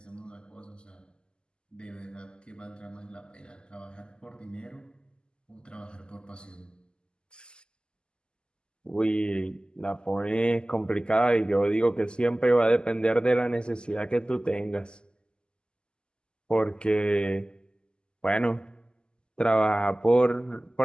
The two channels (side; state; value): right; late; 0.048 ms